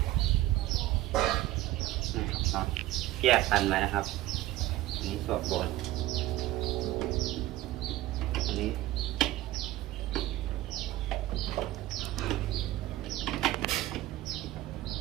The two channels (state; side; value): quieter; left; 16.0 dB